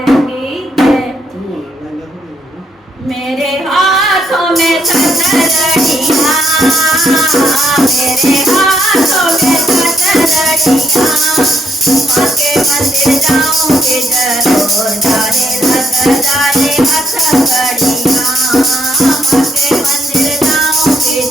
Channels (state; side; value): normal; both; correlation 0.73